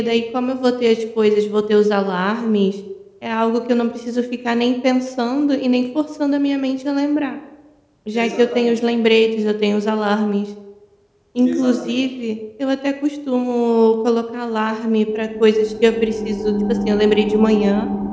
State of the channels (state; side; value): identical; both; correlation 1.00